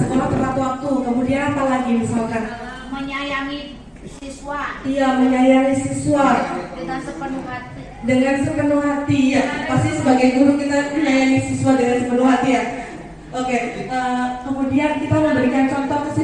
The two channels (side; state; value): both; identical; correlation 1.00